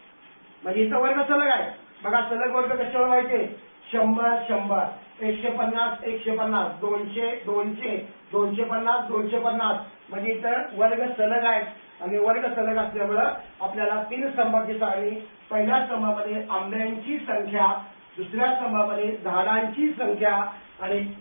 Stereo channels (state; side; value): inverted; both; correlation -1.00